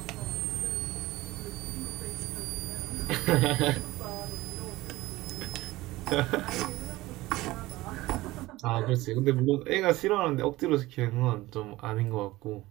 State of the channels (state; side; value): quieter; left; 18.6 dB